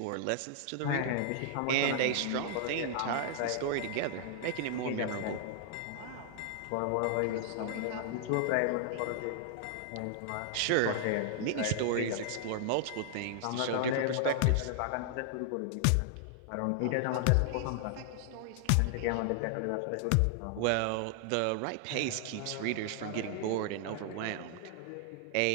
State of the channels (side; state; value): both; different; correlation -0.01